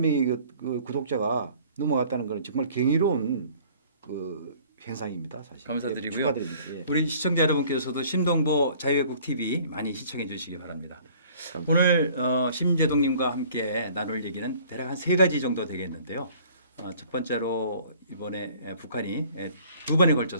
그 구독자가 넘어갔다는 것은 정말 경이로운 그 현상입니다. 사실. 감사드리고요. 축하드립니다. 우리 시청자 여러분께서도 심동보 자유애국 TV 많이 시청해 주시기 바랍니다. 오늘 심재동님과 함께 나눌 얘기는 대략 한 3가지 정도 되겠는데요. 첫 번째로 이번에 북한이 2번에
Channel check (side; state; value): both; inverted; correlation -0.54